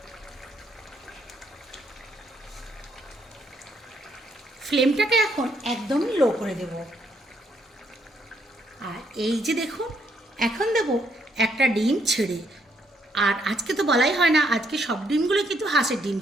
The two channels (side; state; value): both; normal; correlation 0.72